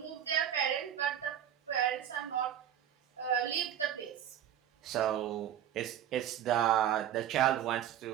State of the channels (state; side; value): quieter; left; 10.4 dB